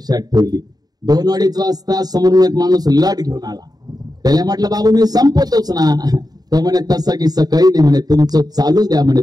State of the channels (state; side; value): late; left; 0.19 ms